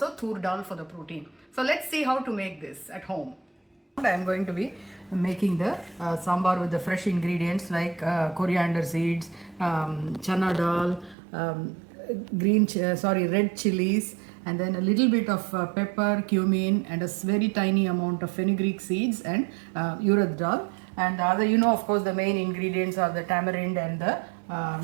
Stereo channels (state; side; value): drops out; left; at 11.2 s